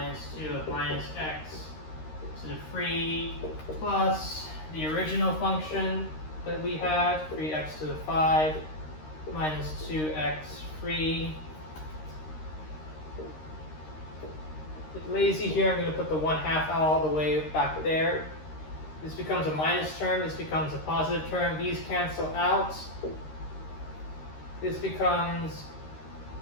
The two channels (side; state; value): right; late; 13 ms